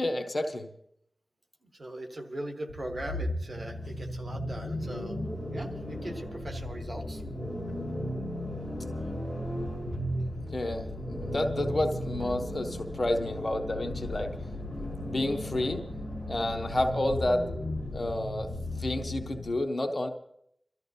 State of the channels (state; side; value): normal; both; correlation 0.92